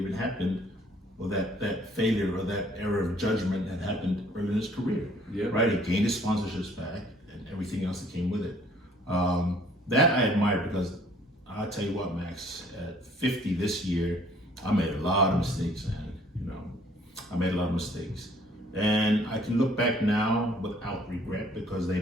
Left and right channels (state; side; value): normal; both; correlation 0.59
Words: happened, or that failure or that error of judgment had happened early in his career. Yeah. Right? He gained his sponsorships back and everything else that came with it. That I admire, because I'll tell you what, Max, at 50 this year, I made a lot of mistakes, man. I made a lot of mistakes. And I can look back now without regret, because they